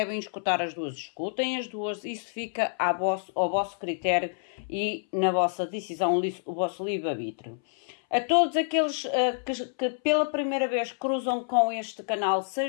escutar as duas, escutem as duas, isso fica ao vosso critério e na vossa decisão, o vosso livre-arbítrio. A todos aqueles que pela primeira vez cruzam com este canal,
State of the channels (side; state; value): right; silent; 59 dB below the other